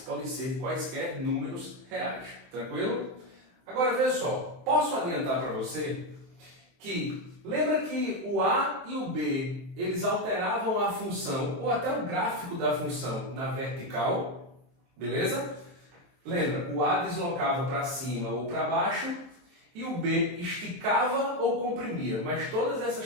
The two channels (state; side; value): late; left; 23 ms